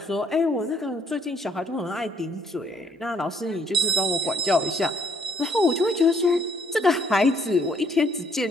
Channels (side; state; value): both; normal; correlation 0.65